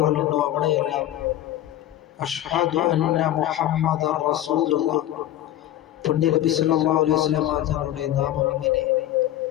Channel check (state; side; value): quieter; right; 13.1 dB